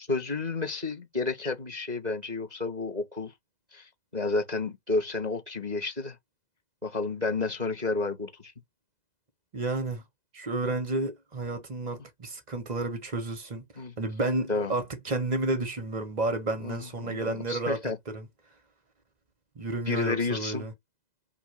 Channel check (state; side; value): late; left; 2.0 ms